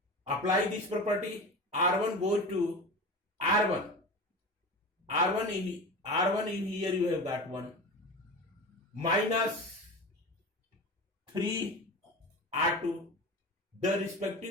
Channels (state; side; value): normal; both; correlation 0.30